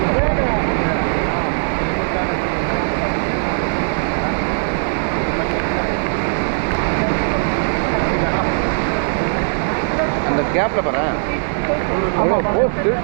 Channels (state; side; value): silent; left; digital silence